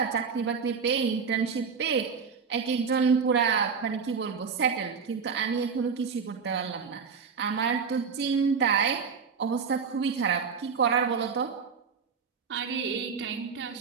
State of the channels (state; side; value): quieter; left; 5.9 dB